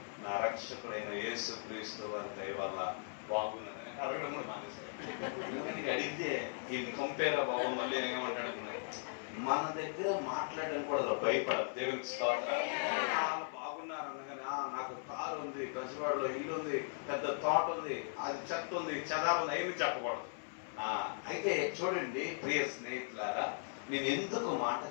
నా రక్షకుడైన యేసు క్రీస్తు వారి దయ వల్ల బాగున్నాను. అడగడం కూడా మానేశారు. అడిగితే ఈ కంపేర్ బాబు మళ్ళీ ఏమంటాడు, మన దగ్గర మాట్లాడడానికి కూడా భయపడరు. దేవునికి స్తోత్రం. వాళ్ళు బాగున్నారు అనగానే నాకు కారు ఉంది, బెజవాడలో ఇల్లు ఉంది, పెద్ద తోట ఉంది, అది చెత్త ఉంది, చెదారు ఉంది, ఏమి చెప్పకూడదు. అయితే చూడండి ప్రియ స్నేహితులారా, నేను ఎందుకు మాట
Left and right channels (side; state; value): right; silent; 52 dB below the other